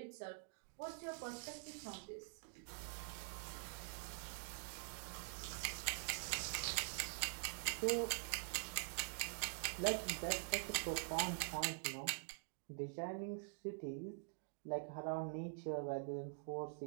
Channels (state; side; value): silent; left; digital silence